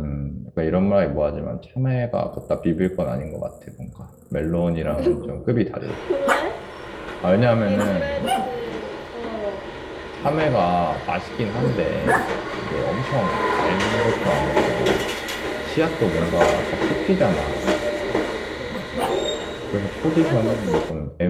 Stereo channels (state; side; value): identical; both; correlation 1.00